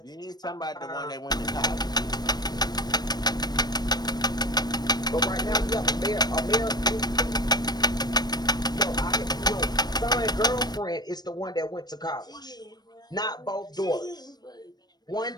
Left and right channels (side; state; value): right; late; 0.19 ms